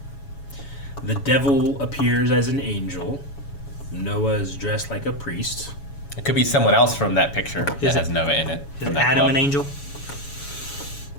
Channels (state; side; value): late; right; 7.1 ms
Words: The devil appears as an angel. Noah is dressed like a priest. It could be someone else from that picture that has Noah in it. Is from that Adam club. an angel?